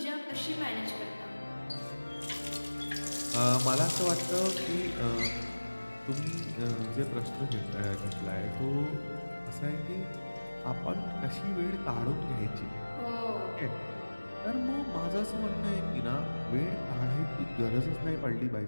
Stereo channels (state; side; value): inverted; both; correlation -1.00